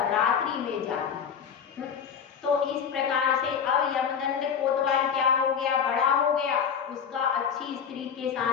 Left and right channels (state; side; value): quieter; right; 7.2 dB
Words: रात्रि में जाती। तो इस प्रकार से अब यमदंड कोतवाल क्या हो गया, बड़ा हो गया, उसका अच्छी स्त्री के